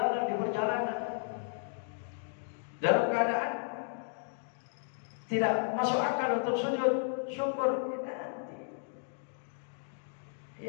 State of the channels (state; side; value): silent; right; digital silence